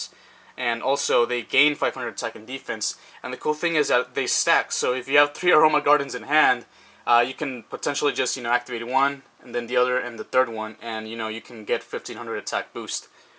And also, they gain 500 attack and defense. And the cool thing is that they stack. So if you have 3 Aroma Gardens in hand, you can potentially just activate one, and then the other, and the third one, and you can get 1500 attack boost.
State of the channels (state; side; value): identical; both; correlation 1.00